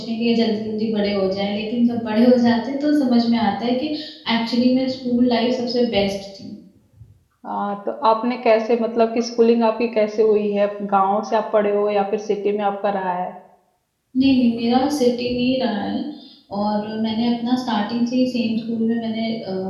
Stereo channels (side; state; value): both; identical; correlation 1.00